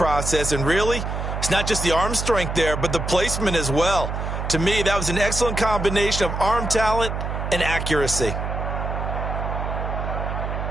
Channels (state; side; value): noise; right; hum, 4 dB below the sound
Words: And really, it's not just the arm strength there, but the placement as well. To me, that was an excellent combination of arm talent and accuracy.